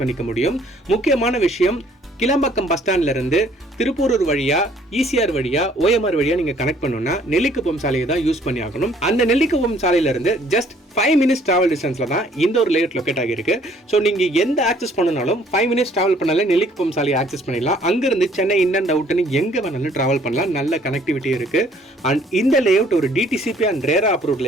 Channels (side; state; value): both; normal; correlation 0.60